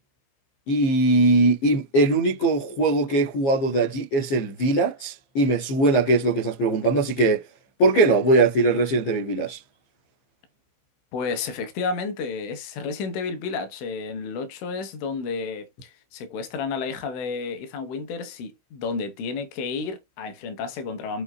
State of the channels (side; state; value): right; late; 15 ms